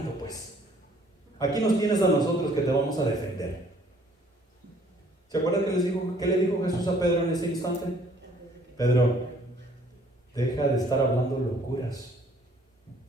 pues. Aquí nos tienes a nosotros que te vamos a defender. ¿Se acuerdan qué le dijo Jesús a Pedro en ese instante? Pedro, deja de estar hablando locuras.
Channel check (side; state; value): both; normal; correlation 0.60